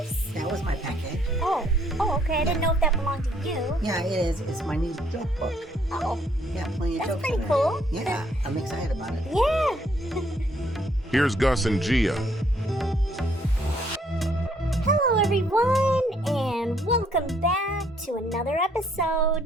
that was my package. Oh, okay. I didn't know if that belonged to you. Yeah, it is. It's my new joke book. Oh, Yeah, plenty of that's jokes pretty in there. cool. Yeah, I'm excited about it. Yeah. Here's Gus and Gia. Hello everyone, and welcome back to another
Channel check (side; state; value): both; normal; correlation 0.67